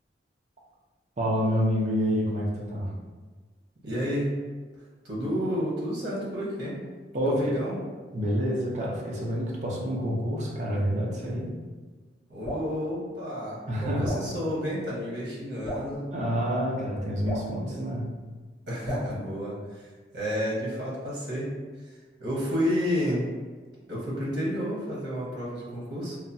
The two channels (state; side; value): normal; both; correlation 0.64